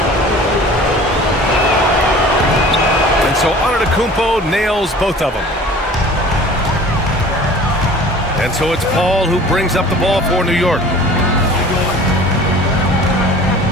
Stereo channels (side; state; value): both; normal; correlation 0.45